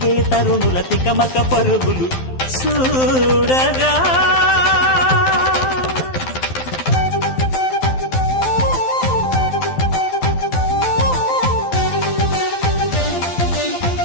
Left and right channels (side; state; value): right; late; 12 ms